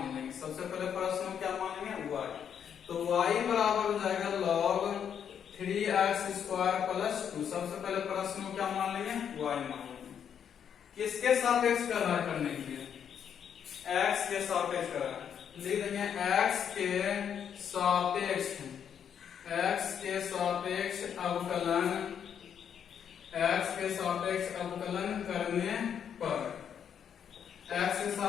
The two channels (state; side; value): quieter; right; 8.3 dB